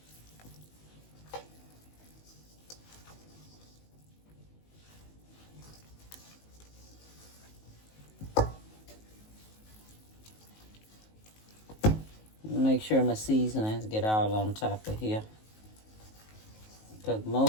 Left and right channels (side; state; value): right; late; 19 ms